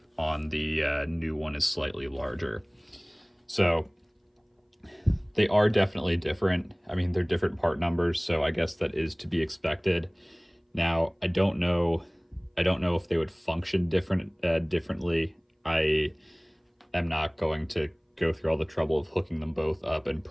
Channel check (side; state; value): both; identical; correlation 1.00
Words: on the new one is slightly larger. So they are definitely different. I mean, they're different part numbers, so I guess that is to be expected. Now, I don't know if they would function differently. I am not going to go through all the trouble of hooking them both up and